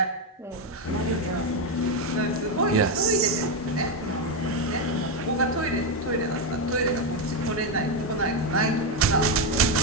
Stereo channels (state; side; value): normal; both; correlation 0.06